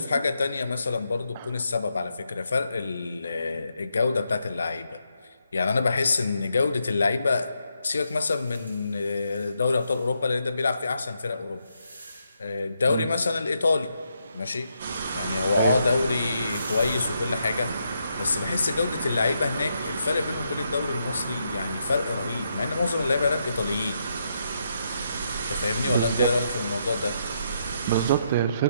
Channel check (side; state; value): both; inverted; correlation -0.80